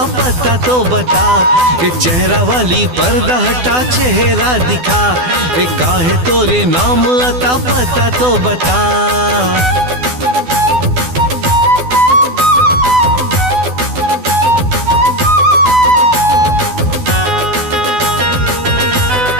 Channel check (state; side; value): late; left; 12 ms